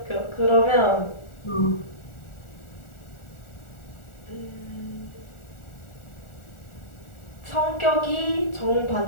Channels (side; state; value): right; late; 1.4 ms